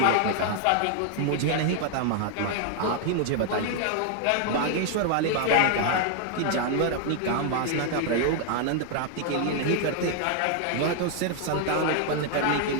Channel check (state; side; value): different; both; correlation 0.00